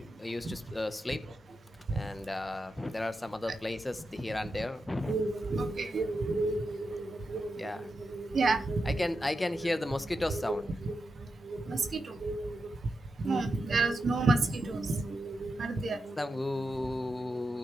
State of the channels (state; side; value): normal; both; correlation 0.88